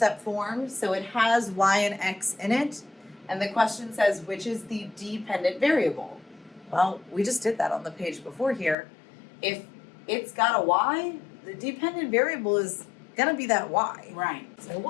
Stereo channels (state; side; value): drops out; right; at 8.8 s